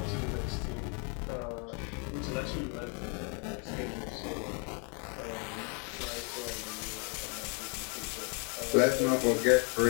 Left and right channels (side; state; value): right; quieter; 36.7 dB